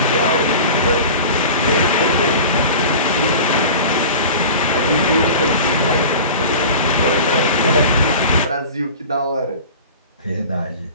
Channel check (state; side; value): inverted; both; correlation -0.37